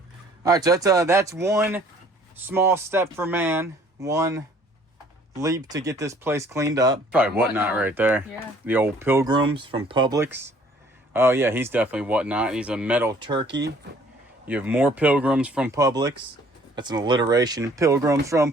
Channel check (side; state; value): both; normal; correlation 0.57